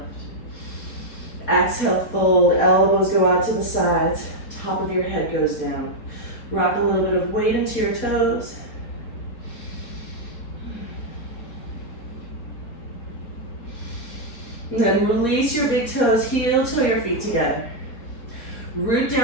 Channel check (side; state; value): right; late; 4.2 ms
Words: Exhale, fold, elbows go out to the sides, top of your head goes down. Rock a little bit of weight into your toes. And then release your big toes, heel toe your feet together. Root